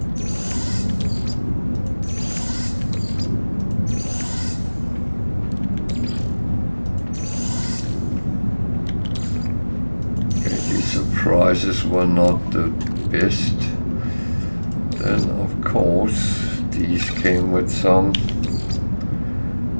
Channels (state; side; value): inverted; both; correlation -1.00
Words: Okay, these surprises were not the best. Then of course these came with some